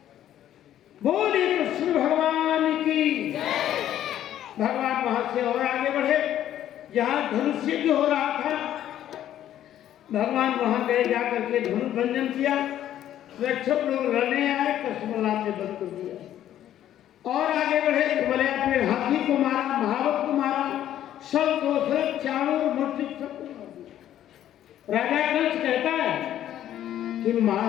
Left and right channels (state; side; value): quieter; right; 11.6 dB